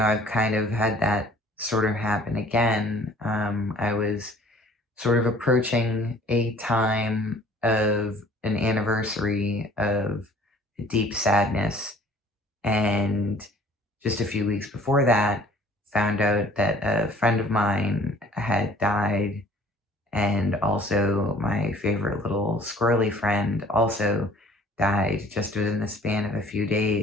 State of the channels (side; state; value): both; normal; correlation 0.53